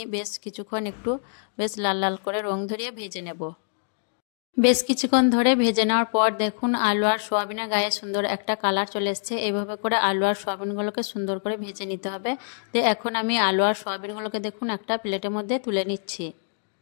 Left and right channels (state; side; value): silent; right; digital silence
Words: বেশ কিছুক্ষণ একটু বেশ লাল লাল করে রং ধরিয়ে ভেজে নেব। বেশ কিছুক্ষণ ধরে ভেজে নেওয়ার পর দেখুন আলু আর সোয়াবিনের গায়ে সুন্দর একটা কালার চলে এসছে। এইভাবে করে আলু আর সোয়াবিনগুলোকে সুন্দর করে ভেজে নিতে হবে। তো এখন আমি আলু আর সোয়াবিনগুলোকে দেখুন একটা প্লেটের মধ্যে তুলে নিচ্ছি।